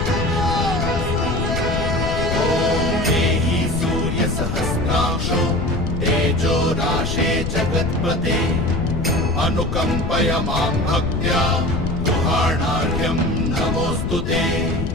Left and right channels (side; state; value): left; noise; rumble, 2 dB below the sound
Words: सहस्रांशो तेजो राशे जगत्पते अनुकंपय मां भक्त्या गृहाणार्घ्यं नमोऽस्तु ते।